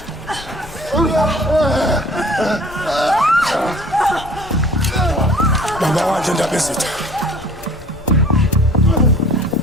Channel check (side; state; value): left; noise; rumble, 19 dB below the sound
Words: Baba wathi ndaba ezitha.